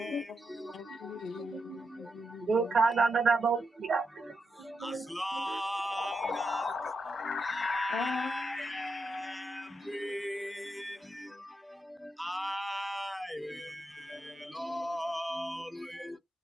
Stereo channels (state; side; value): normal; both; correlation 0.84